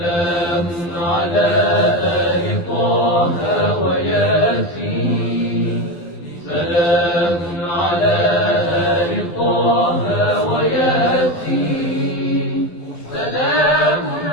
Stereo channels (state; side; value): late; right; 12 ms